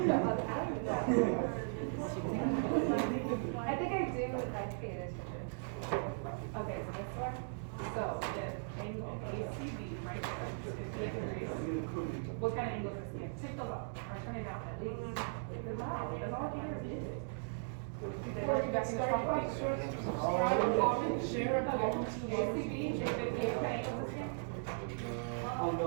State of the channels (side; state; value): left; silent; digital silence